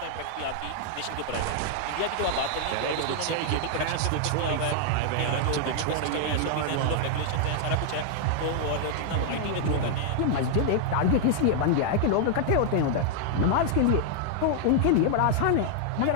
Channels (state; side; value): different; both; correlation 0.00